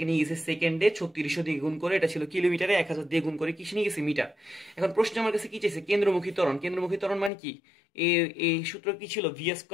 নিয়ে গেছে সেকেন্ডে 3600 দিয়ে গুণ করে, এটা ছিল কিলোমিটারে 1000 দিয়ে গুণ করে কিসে নিয়ে গেছে, মিটার। এখন প্রশ্ন আমার কাছে কি চাইছে, কেন্দ্রমুখী ত্বরণ। কেন্দ্রমুখী ত্বরণ মানে কি, এই সূত্র কি ছিল, v²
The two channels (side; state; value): right; drops out; at 7.3 s